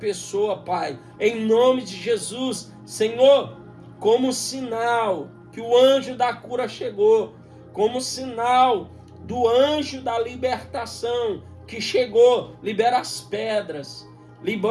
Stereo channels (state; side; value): identical; both; correlation 1.00